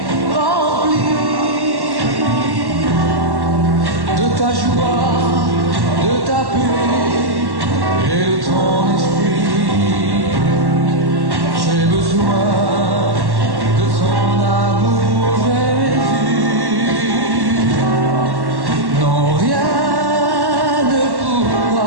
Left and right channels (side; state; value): left; late; 1.1 ms